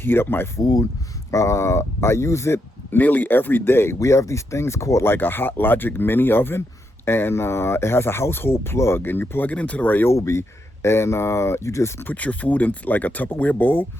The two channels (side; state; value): both; normal; correlation 0.81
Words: up my food. I use it nearly every day. We have these things called like a Hot Logic mini oven, and it has a household plug, and you plug it into the Ryobi, and you just put your food in like a Tupperware bowl.